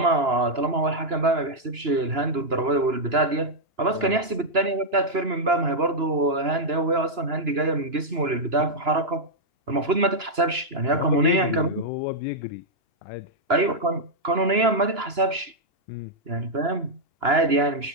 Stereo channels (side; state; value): left; late; 2.9 ms